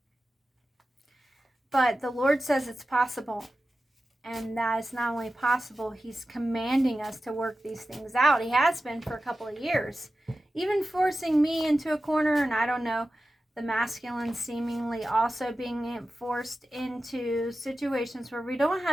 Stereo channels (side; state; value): both; normal; correlation 0.94